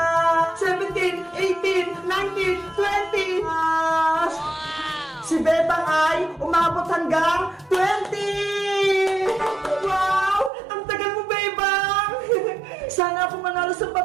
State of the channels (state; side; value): drops out; left; at 10.5 s